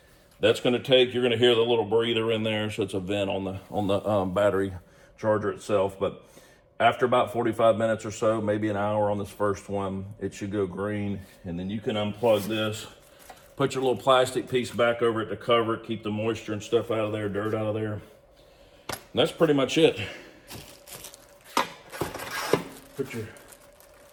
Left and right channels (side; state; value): both; identical; correlation 1.00